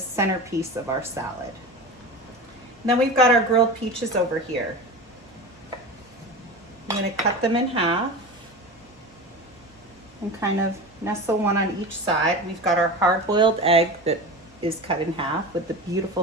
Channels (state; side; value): normal; both; correlation 0.29